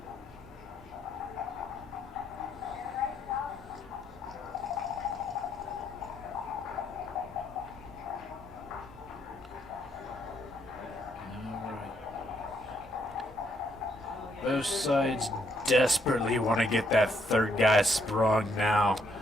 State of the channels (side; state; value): both; normal; correlation 0.73